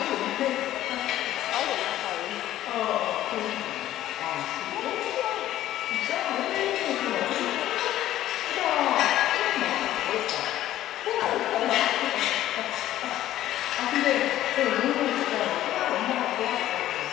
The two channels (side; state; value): right; quieter; 13.4 dB